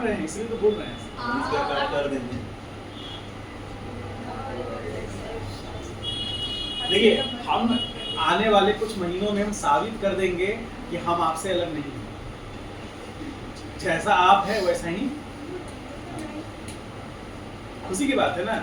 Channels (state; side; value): identical; both; correlation 1.00